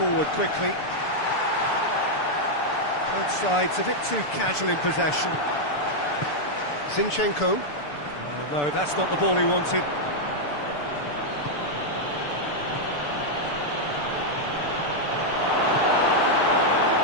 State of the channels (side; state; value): right; late; 6.8 ms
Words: quickly. Both sides a bit too casual in possession. Zinchenko. Oh, no, that's not the ball he wanted.